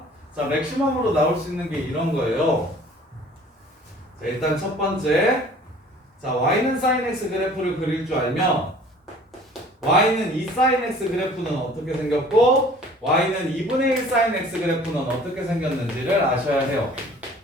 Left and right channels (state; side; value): normal; both; correlation 0.50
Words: 자, 맥시멈으로 나올 수 있는 게 이런 거예요. 자, 일단 첫 번째, 자, y는 sin x 그래프를 그릴 줄 알면 y는 2 sin x 그래프는 어떻게 생겼고 y는 2분의 1 sin x 그래프는 어떻게 생겼는지를 아셔야 해요.